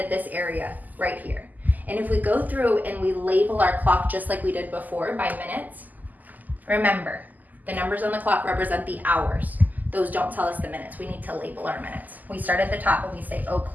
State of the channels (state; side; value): late; left; 0.082 ms